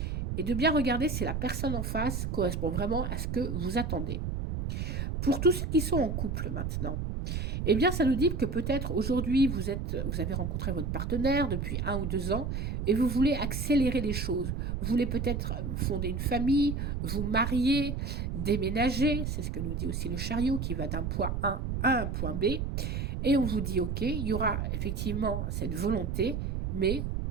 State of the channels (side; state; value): right; noise; rumble, 2 dB below the sound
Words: et de bien regarder si la personne en face correspond vraiment à ce que vous attendez. Pour tous ceux qui sont en couple maintenant, eh bien, ça nous dit que peut-être aujourd'hui, vous avez rencontré votre partenaire depuis 1 ou 2 ans et vous voulez accélérer les choses. Vous voulez peut-être fonder une famille, vous marier, déménager. C'est ce que nous dit aussi le chariot qui va d'un point A à un point B. Et on vous dit, OK, il y aura effectivement cette volonté, mais